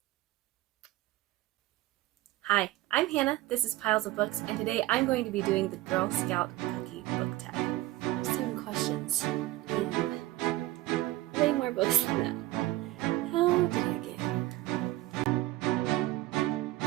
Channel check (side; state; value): left; quieter; 17.2 dB